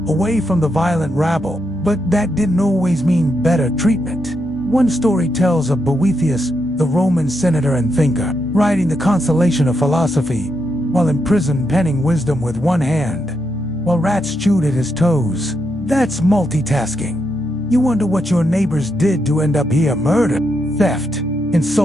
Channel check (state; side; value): normal; both; correlation 0.82